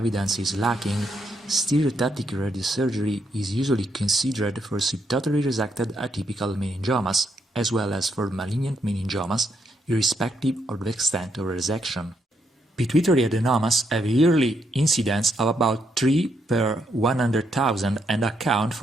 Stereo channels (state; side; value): normal; both; correlation 0.77